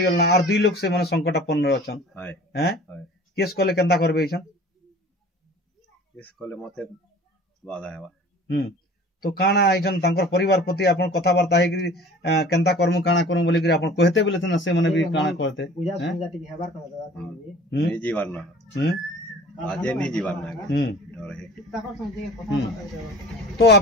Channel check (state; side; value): normal; both; correlation 0.45